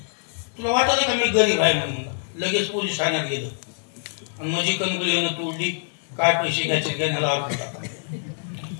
तुला वाटलं का मी गरीब आहे म्हणून लगेच पोलीस ठाण्यात गेलं आणि माझी कणगुली तोडली काय पैसे घ्यायचे घेण्याला आलो.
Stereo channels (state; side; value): silent; right; 62 dB below the other